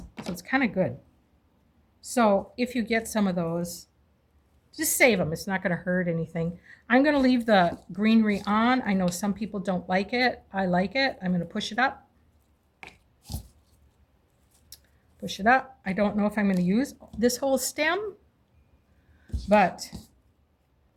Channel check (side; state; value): both; identical; correlation 1.00